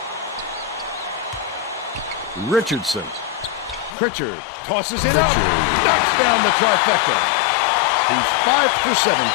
Richardson. Pritchard tosses it up. Knocks down the trifecta. He's 5 for 7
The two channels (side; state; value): right; drops out; at 4.0 s